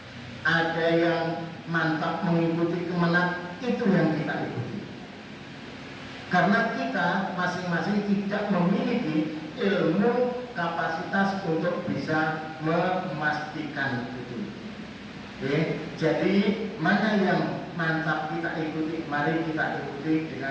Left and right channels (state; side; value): identical; both; correlation 1.00